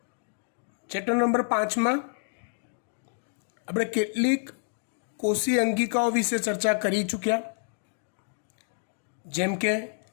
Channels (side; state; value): right; silent; digital silence